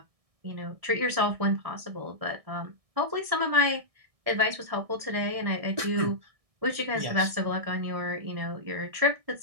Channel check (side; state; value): left; late; 1.6 ms